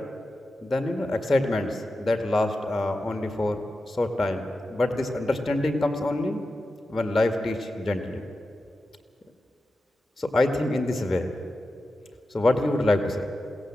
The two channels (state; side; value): normal; both; correlation 0.92